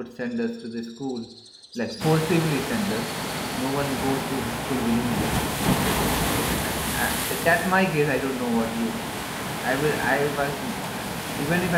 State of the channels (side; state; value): both; identical; correlation 1.00